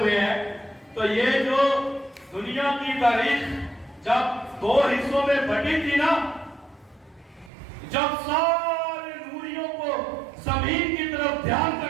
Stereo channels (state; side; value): drops out; left; at 7.5 s